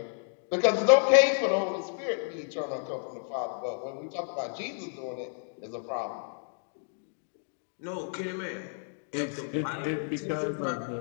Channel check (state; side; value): silent; right; digital silence